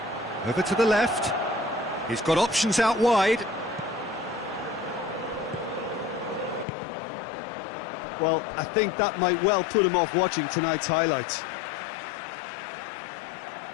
over to the left. He's got options out wide. Well, I think that might well put him off watching tonight's highlights.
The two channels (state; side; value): drops out; right; at 6.7 s